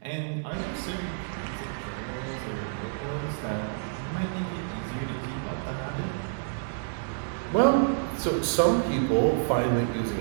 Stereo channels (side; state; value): left; silent; 59 dB below the other